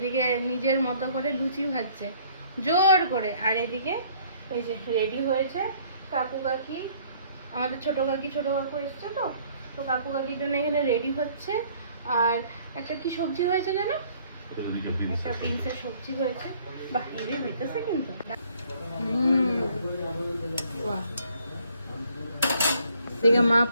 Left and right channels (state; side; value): inverted; both; correlation -0.59